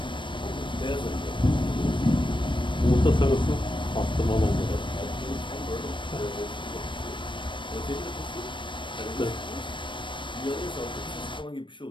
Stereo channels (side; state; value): right; late; 0.24 ms